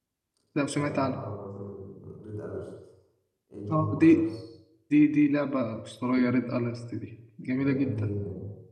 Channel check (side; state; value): both; identical; correlation 1.00